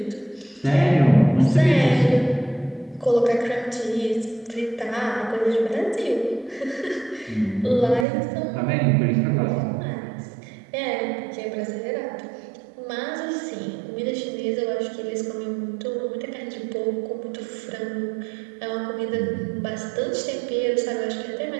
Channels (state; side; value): drops out; left; at 8.1 s